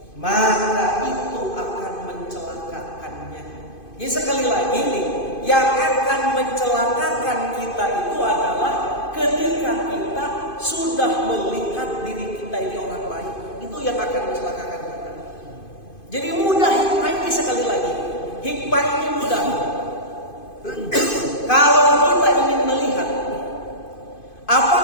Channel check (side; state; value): right; late; 2.5 ms